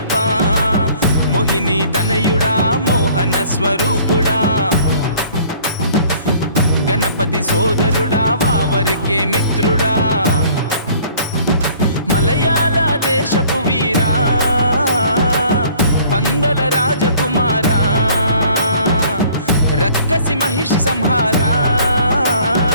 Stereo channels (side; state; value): both; inverted; correlation -0.54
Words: మోహిని తనయుడా మోహన స్వరూపుడా గణపతి సోదరుడా వావరికే మిత్రుడా మలయాళ దేశపు వీరా పందల రాజకుమారా రక్కసి మహిషి సంహారా